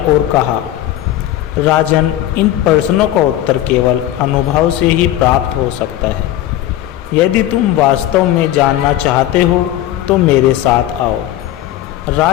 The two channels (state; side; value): quieter; right; 13.4 dB